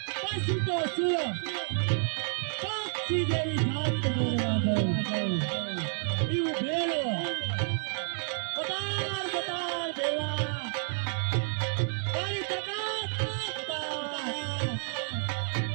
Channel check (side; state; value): left; silent; digital silence